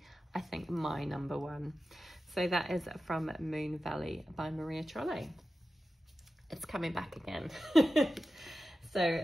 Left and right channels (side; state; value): both; normal; correlation 0.93